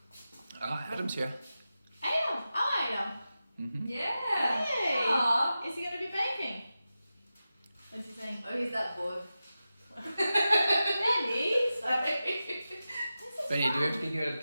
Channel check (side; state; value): both; inverted; correlation -0.93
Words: go. Adam's here. Adam! Oh, Adam! Mm-hmm. Yeah! Hey! Aww. Is he going to be baking? What's he saying? Oh, he's that bored. Benny! Sorry. Benny, do we have to kick you out of the